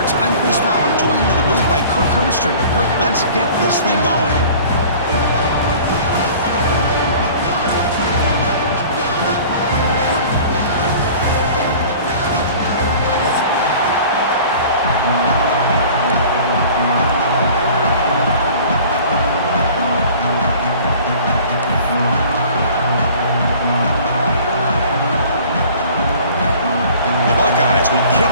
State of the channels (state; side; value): inverted; both; correlation -0.46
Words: I'm Chris Fowler, joined in the booth by Kirk Herbstreit. Kirk, let's get this thing going. Buckeyes will kick